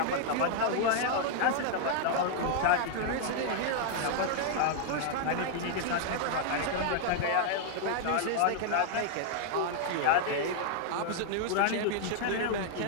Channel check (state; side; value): different; both; correlation 0.00